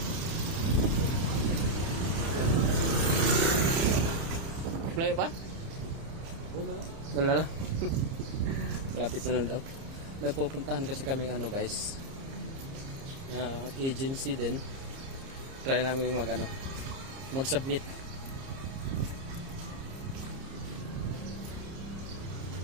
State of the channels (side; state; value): left; late; 30 ms